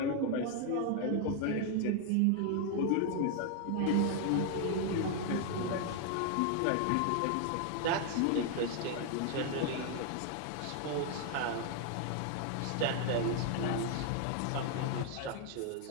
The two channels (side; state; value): both; different; correlation 0.00